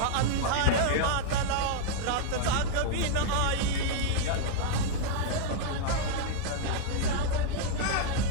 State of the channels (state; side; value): different; both; correlation -0.01